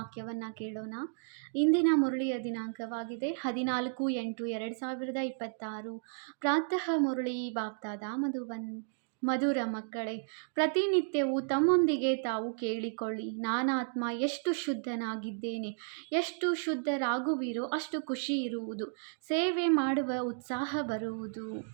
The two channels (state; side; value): silent; left; digital silence